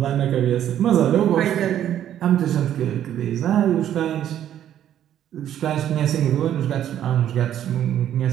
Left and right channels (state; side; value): quieter; left; 10.9 dB